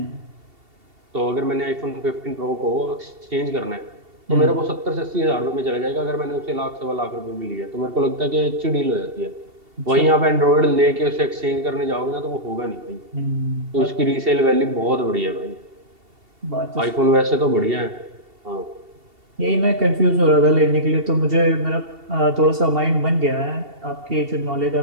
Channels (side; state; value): left; late; 2.7 ms